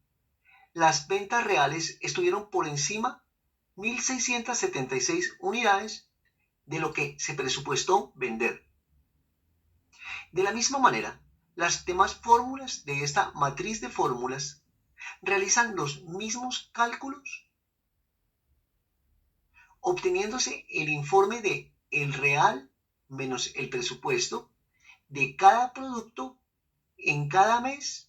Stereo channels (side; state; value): both; identical; correlation 1.00